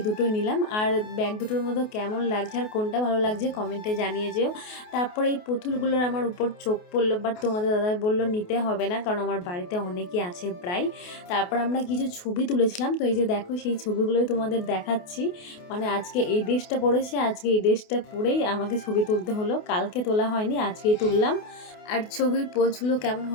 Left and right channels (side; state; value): right; late; 28 ms